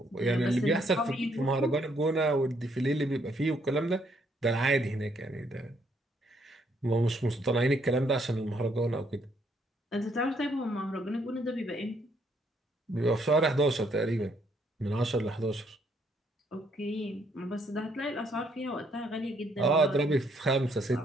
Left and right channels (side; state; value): both; normal; correlation 0.71